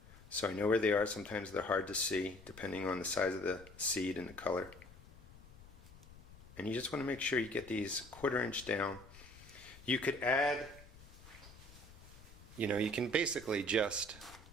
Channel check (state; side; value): noise; left; rumble, 19 dB below the sound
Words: so I know where they are. Sometimes they're hard to see, depending on the size of the seed and the color. And you just want to make sure you get these 1/4 inch down. You could add, you can basically just